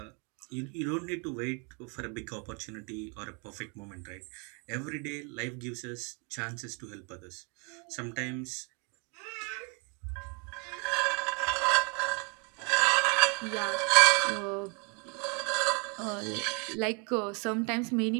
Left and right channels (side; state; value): left; quieter; 34.8 dB